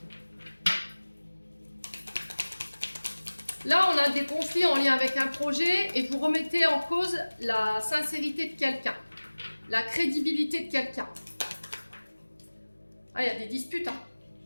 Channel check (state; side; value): inverted; both; correlation -1.00